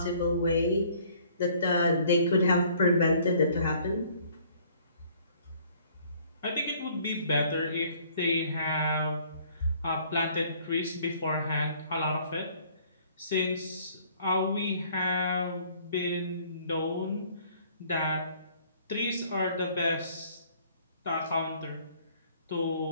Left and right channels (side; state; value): both; inverted; correlation -0.58